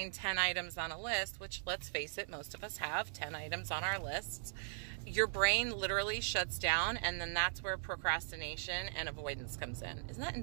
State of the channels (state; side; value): silent; left; digital silence